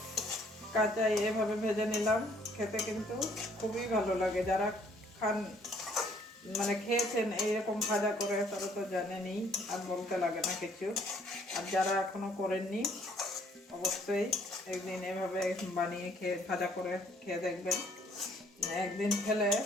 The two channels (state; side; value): normal; both; correlation 0.62